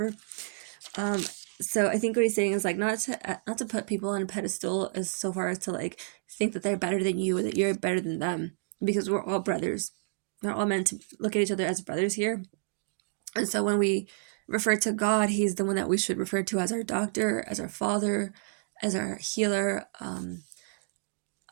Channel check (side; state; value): left; silent; digital silence